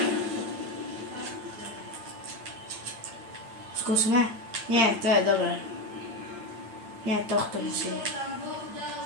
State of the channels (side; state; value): left; late; 8.8 ms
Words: Skúsme? Nie, to je dobré. Nie, tohto musíme.